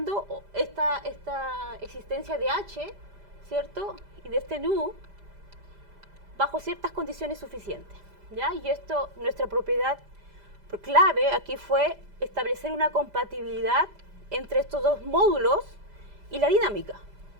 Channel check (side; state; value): left; late; 5.0 ms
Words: esta existencia de H, ¿cierto? Y de este nu bajo ciertas condiciones suficientes, ¿ya? Y esto, nuestra propiedad clave aquí fue establecer una compatibilidad entre estos dos módulos y la dinámica.